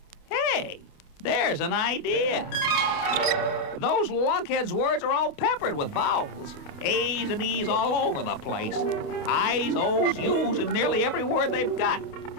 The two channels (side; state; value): right; late; 28 ms